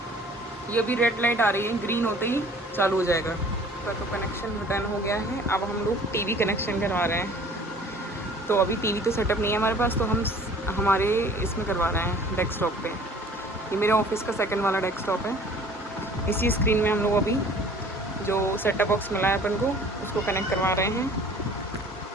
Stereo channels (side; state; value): both; normal; correlation 0.50